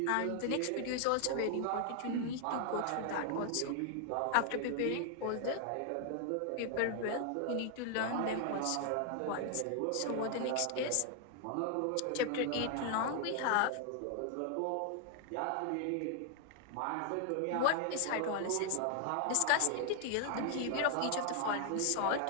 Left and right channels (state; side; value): different; both; correlation 0.00